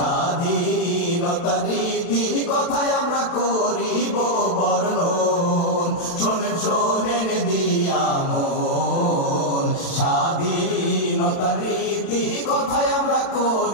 রীতি কথায় আমরা করিব বর্ণন। শোনেন শোনেন দিয়া মন, স্বাধীনতার রীতি কথায় আমরা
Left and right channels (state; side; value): late; right; 36 ms